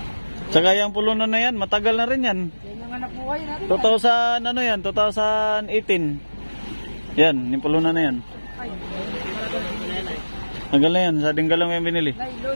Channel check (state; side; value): inverted; both; correlation -1.00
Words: Tsaka yung pulunan na yan, matagal na rin yan. Yan yung anak buhay natin. 2000, ano yan? 2018. Yan, yung pulunan na yan. Ay, Tagal na yan, sa dinggalong yung binili. nylon.